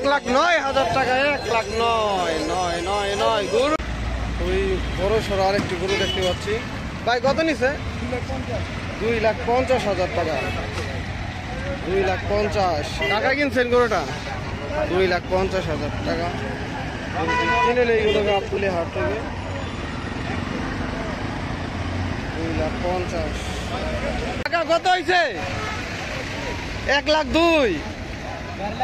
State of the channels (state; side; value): identical; both; correlation 1.00